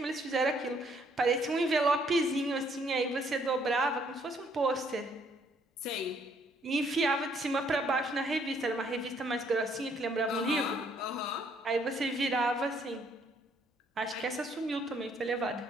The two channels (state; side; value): normal; both; correlation 0.67